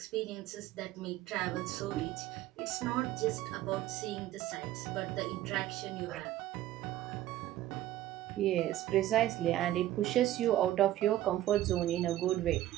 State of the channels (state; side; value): quieter; left; 14.0 dB